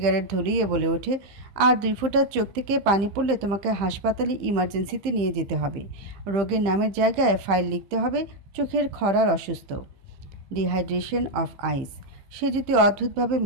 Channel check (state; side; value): late; left; 15 ms